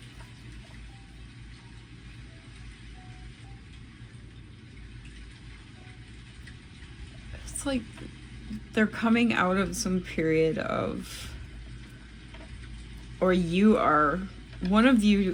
It's like they're coming out of some period of, or you are, one of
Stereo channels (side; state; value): both; identical; correlation 1.00